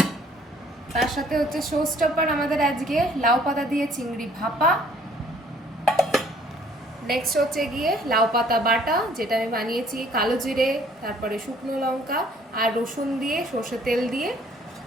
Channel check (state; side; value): normal; both; correlation 0.59